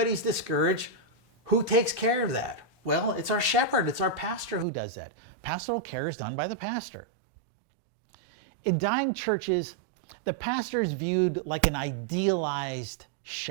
discouraged, who takes care of that? Well, it's our shepherd. It's our pastor who does that. Pastoral care is done by the pastor. In dying churches, the pastor is viewed like an idealized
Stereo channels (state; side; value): drops out; left; at 4.7 s